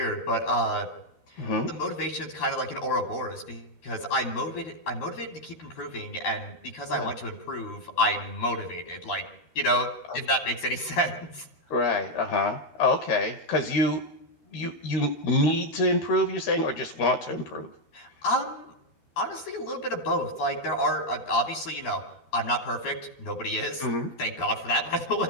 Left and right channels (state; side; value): late; right; 13 ms